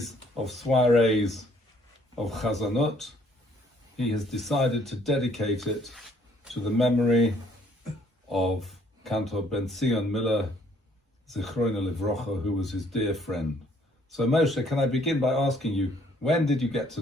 of soirees of Chazanut, he has decided to dedicate it to the memory of Cantor Benzion Miller, Zichrono Livrocha, who was his dear friend. So Moshe, can I begin by asking you, when did you get to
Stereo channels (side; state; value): both; normal; correlation 0.63